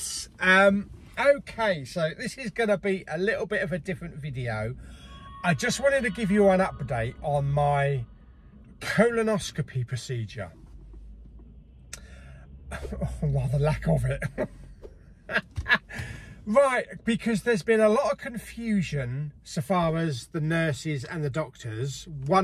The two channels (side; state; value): both; identical; correlation 1.00